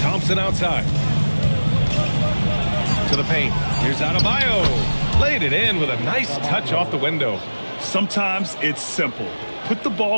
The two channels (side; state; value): both; inverted; correlation -1.00